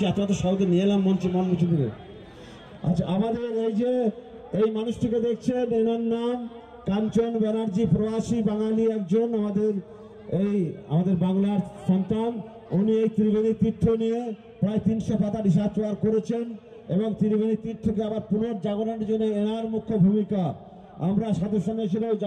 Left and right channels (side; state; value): both; identical; correlation 1.00